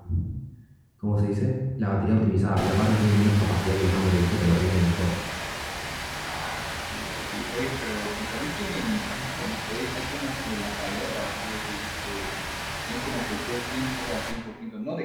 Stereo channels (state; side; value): identical; both; correlation 1.00